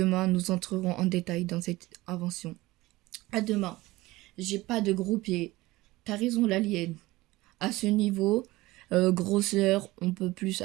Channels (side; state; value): left; quieter; 19.2 dB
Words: nous entrerons en détail dans cette invention. À demain. J'ai pas de gros pieds. T'as raison, l'alien. À ce niveau, grosseur, on peut plus